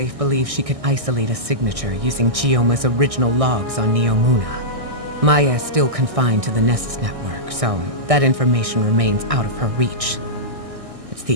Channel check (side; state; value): left; late; 1.6 ms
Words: believes she could isolate a signature using Chioma's original logs on Neomuna. Maya is still confined to the Nessus network, so that information remains out of her reach. It's